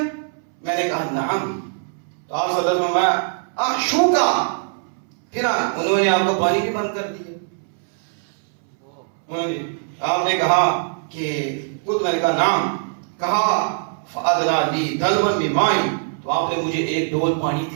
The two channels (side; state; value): left; silent; 64 dB below the other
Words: میں نے کہا نعم. تو آپ صلی اللہ علیہ وسلم احشوکا، پھر انہوں نے آپ کو پانی بھی بند کر دیا. آپ نے کہا کہ خود، میں نے کہا نام. کہا فَأَدْنَا لِي دَلْوًا بِمَاءٍ، تو آپ نے مجھے ایک ڈول پانی